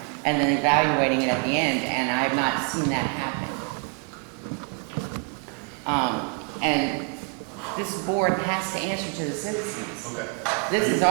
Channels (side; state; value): left; quieter; 34.7 dB